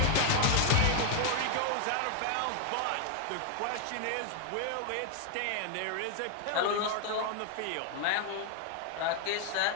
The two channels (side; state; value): both; different; correlation 0.00